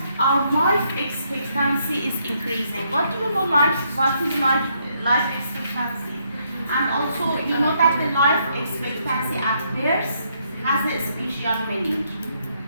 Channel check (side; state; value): both; inverted; correlation -0.73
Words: our life expectancy is increasing. What do you know? What is life expectancy? And also, you know that the life expectancy at birth has a special meaning.